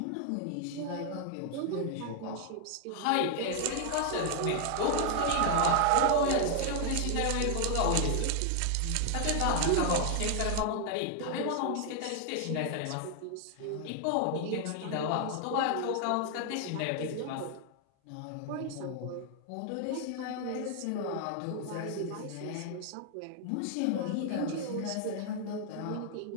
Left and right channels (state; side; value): different; both; correlation 0.00